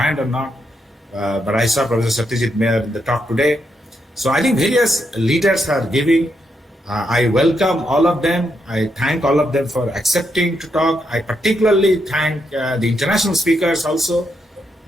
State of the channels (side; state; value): both; normal; correlation 0.80